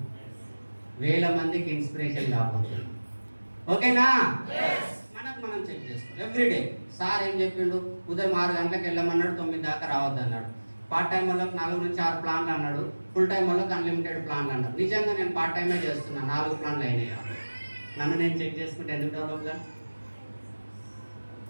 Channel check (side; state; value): both; inverted; correlation -1.00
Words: వేల మందికి ఇన్స్పిరేషన్ కాబోతున్నాం. ఓకేనా? మనం చెక్ చేసుకోవాలి ఎవ్రీడే. సార్ ఏం చెప్పిండు? ఉదయం 6 గంటలకు వెళ్ళమన్నాడు, 9 దాకా రావద్దు అన్నాడు. పార్ట్ టైం వాళ్ళకి 4 నుంచి 6 ప్లాన్లు అన్నాడు, ఫుల్ టైం వాళ్ళకి అన్లిమిటెడ్ ప్లాన్లు అన్నాడు. నిజంగా నేను పార్ట్ టైమే చేస్తున్నా, 4 ప్లాన్లు అయినాయి. నన్ను నేను చెక్ చేసుకుంటే ఎందుకు డెవలప్గా?